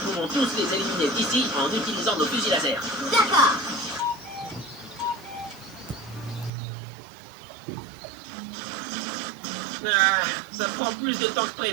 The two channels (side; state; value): left; drops out; at 6.5 s